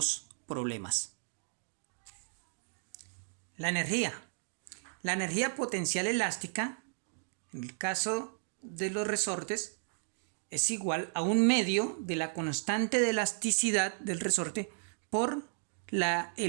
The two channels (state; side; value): silent; left; digital silence